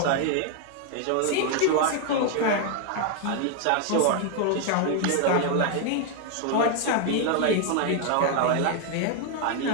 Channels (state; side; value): different; both; correlation 0.01